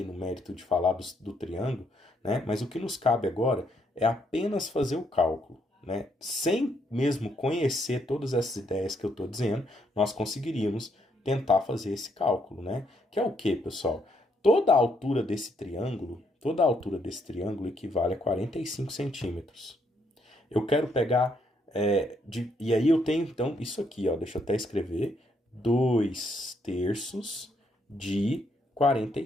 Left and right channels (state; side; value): normal; both; correlation 0.73